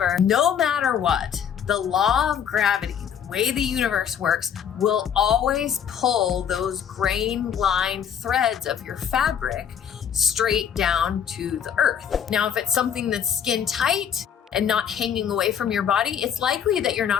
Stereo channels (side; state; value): right; quieter; 8.4 dB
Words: no matter what, the law of gravity, the way the universe works, will always pull those grain line threads of your fabric straight down to the earth. Now, if it's something that's skin tight and not hanging away from your body, it's likely that you're